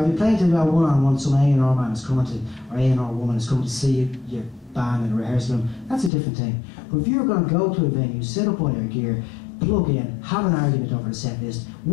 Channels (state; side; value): drops out; right; at 6.1 s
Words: if you're playing to a one-on-one, some A&R man is coming to, or A&R woman is coming to see your band in a rehearsal room, that's a different thing. But if you're going to go to a venue, sit up on your gear, plug in, have an argument over the set list,